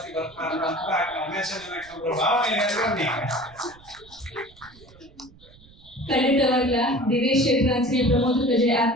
ಬರ್ತಾ ಭಾವನೆ ಖಂಡಿತವಾಗ್ಲ ದಿನೇಶ್ ಶೆಟ್ಟರ್ ಅಂಚನೆ ಪ್ರಮೋದ್ ಕಜೆ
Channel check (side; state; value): right; noise; rumble, 25 dB below the sound